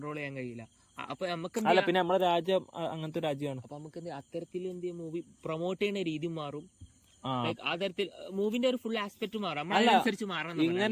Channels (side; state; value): both; identical; correlation 1.00